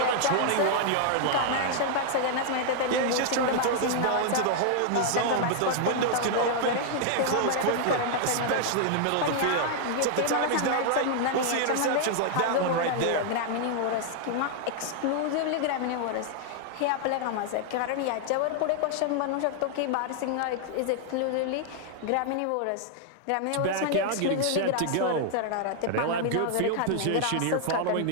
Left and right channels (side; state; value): both; different; correlation -0.01